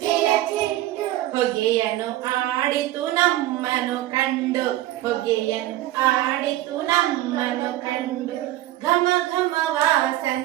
ಚೆಂಡು. ಹೊಗೆಯನ್ನು ಆಡಿತು ನಮ್ಮನು ಕಂಡು, ಹೊಗೆಯನ್ನು ಆಡಿತು ನಮ್ಮನು ಕಂಡು. ಘಮ ಘಮ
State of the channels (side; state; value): left; quieter; 15.2 dB